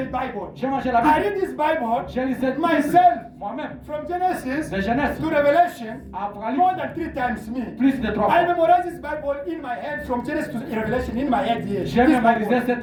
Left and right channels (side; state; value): both; identical; correlation 1.00